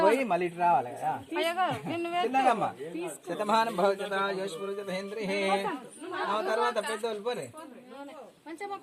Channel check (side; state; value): both; identical; correlation 1.00